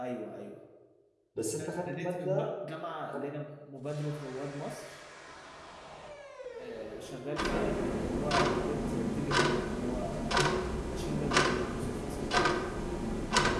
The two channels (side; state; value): both; identical; correlation 1.00